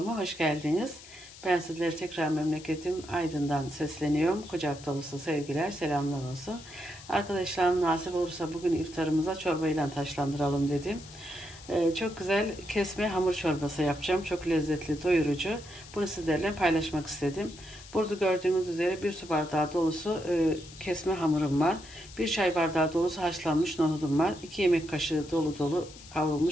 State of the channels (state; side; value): noise; left; hiss, 18 dB below the sound